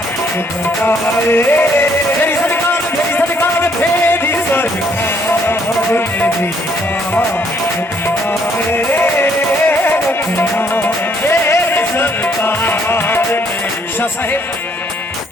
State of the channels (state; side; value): normal; both; correlation 0.67